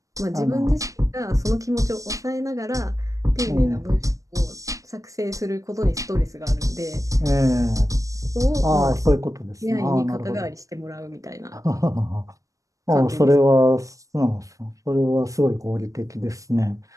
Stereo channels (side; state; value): left; late; 0.16 ms